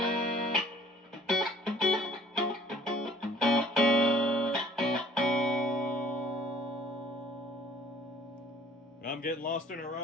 I'm getting lost in her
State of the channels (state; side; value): normal; both; correlation 0.54